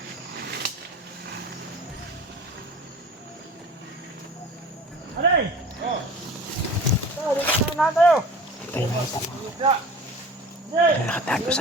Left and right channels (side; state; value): both; normal; correlation 0.40